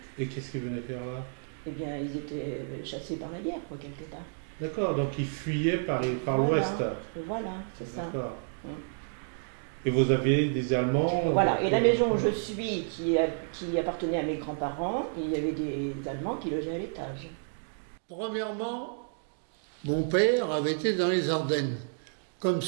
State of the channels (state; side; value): silent; left; digital silence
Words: Et qu'est-ce qu'ils venaient faire là? Eh bien, ils étaient chassés par la guerre, quoi, quelque part. D'accord, donc ils fuyaient par l'ouest. Voilà, c'est ça. D'accord. Et vous aviez des Allemands? Voilà, et la maison où je suis, qui appartenait à mes grands-parents, il y avait des Allemands qui logeaient à l'étage. Premièrement, mon père avait été dans les Ardennes, comme